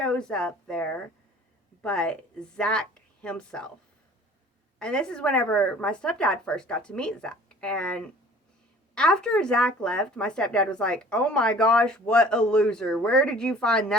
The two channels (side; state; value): both; normal; correlation 0.49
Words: up there but Zach himself. And this is whenever my stepdad first got to meet Zach. And after Zach left, my stepdad was like, oh my gosh, what a loser. Where did you find